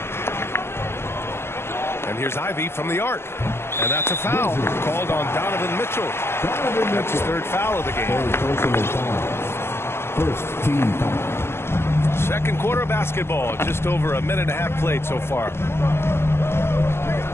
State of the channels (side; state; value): right; late; 0.12 ms